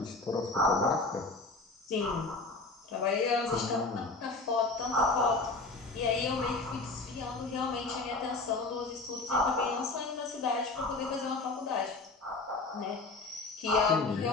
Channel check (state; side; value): quieter; right; 3.5 dB